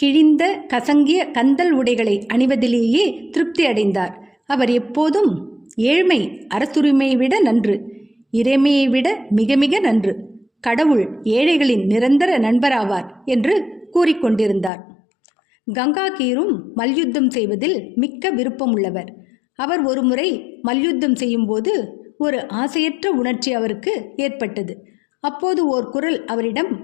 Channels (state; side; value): drops out; right; at 14.7 s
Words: கசங்கிய கந்தல் உடைகளை அணிவதிலேயே திருப்தி அடைந்தார். அவர் எப்போதும் ஏழ்மை அரசுரிமையை விட நன்று, இறைமையை விட மிக மிக நன்று, கடவுள் ஏழைகளின் நிரந்தர நண்பராவார் என்று கூறிக்கொண்டிருந்தார். கங்காகீரும் மல்யுத்தம் செய்வதில் மிக்க விருப்பமுள்ளவர். அவர் ஒருமுறை மல்யுத்தம் செய்யும்போது ஒரு ஆசையற்ற உணர்ச்சி அவருக்கு ஏற்பட்டது. அப்போது ஓர் குரல் அவரிடம்